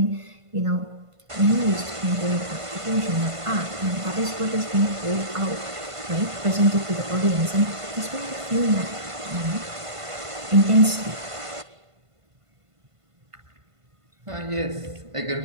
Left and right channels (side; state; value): left; late; 1.5 ms